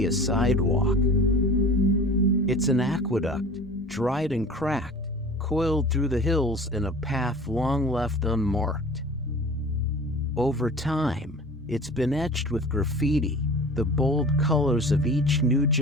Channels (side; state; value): both; normal; correlation 0.40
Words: a sidewalk. It's an aqueduct, dried and cracked, coiled through the hills in a path long left unmarked. Over time, it's been etched with graffiti, the bold colors of each new